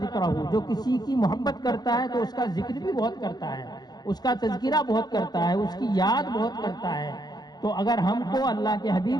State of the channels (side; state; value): right; late; 0.20 ms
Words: جو کسی کی محبت کرتا ہے تو اس کا ذکر بھی بہت کرتا ہے، اس کا تذکرہ بہت کرتا ہے، اس کی یاد بہت کرتا ہے۔ تو اگر ہم کو اللہ کے